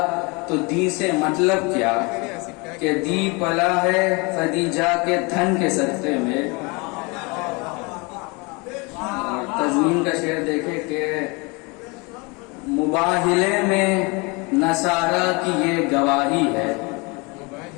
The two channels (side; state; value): right; quieter; 28.7 dB